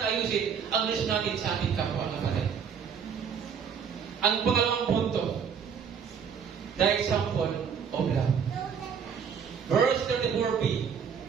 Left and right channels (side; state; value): left; quieter; 7.1 dB